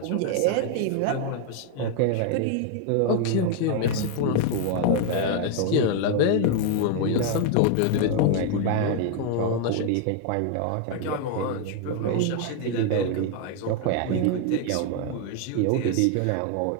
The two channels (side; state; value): both; different; correlation 0.00